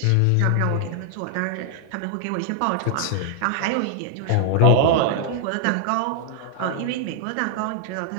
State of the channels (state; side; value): different; both; correlation 0.00